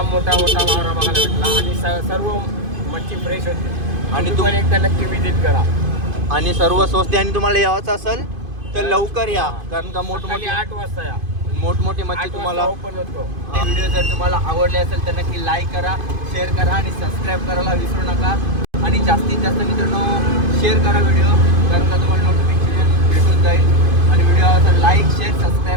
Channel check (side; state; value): left; late; 2.5 ms